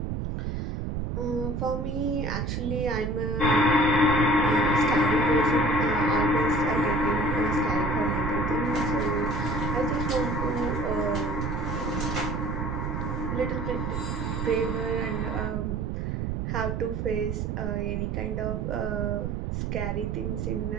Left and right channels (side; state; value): right; noise; rumble, 2 dB below the sound